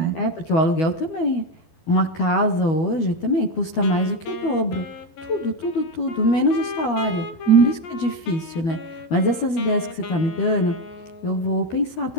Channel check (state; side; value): late; right; 12 ms